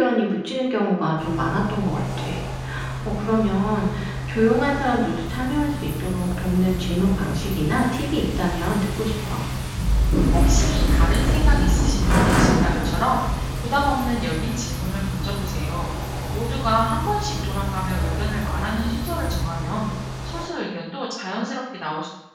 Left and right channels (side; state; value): both; identical; correlation 1.00